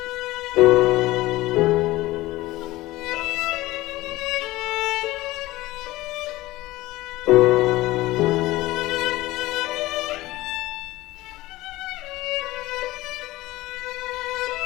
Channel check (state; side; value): quieter; right; 18.3 dB